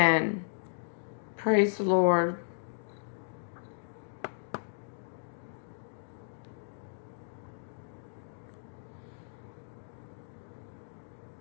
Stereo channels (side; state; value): right; silent; digital silence